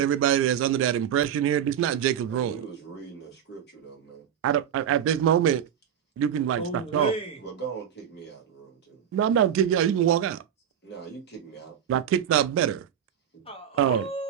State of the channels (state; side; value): quieter; left; 9.2 dB